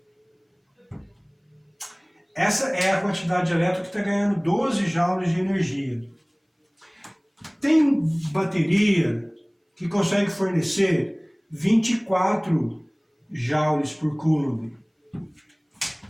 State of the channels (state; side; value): identical; both; correlation 1.00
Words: Essa é a quantidade de elétrons que está ganhando 12 joules de energia. Tem bateria que consegue fornecer 24 joules por coulomb.